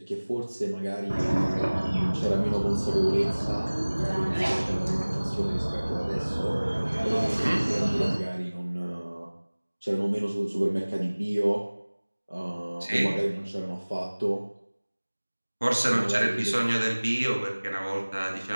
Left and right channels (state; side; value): inverted; both; correlation -1.00